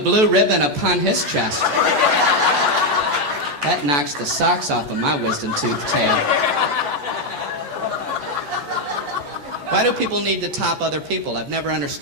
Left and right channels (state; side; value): late; left; 14 ms